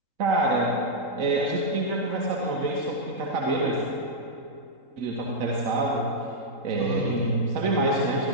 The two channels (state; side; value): late; left; 3.8 ms